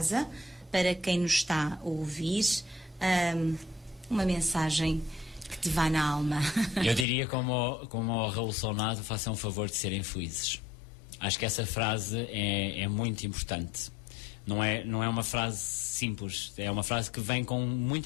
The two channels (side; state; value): right; drops out; at 7.1 s